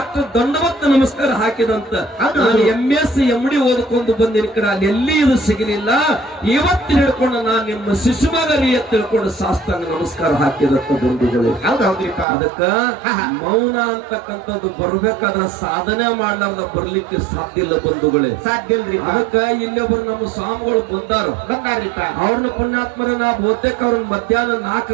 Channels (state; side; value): drops out; left; at 12.2 s